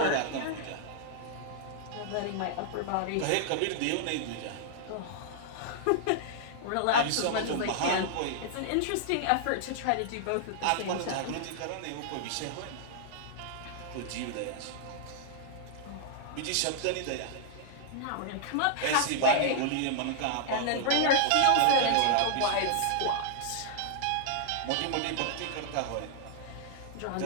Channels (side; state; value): both; different; correlation -0.01